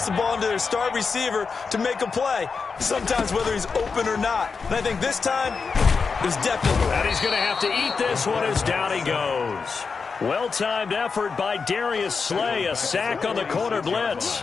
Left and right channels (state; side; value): quieter; right; 5.1 dB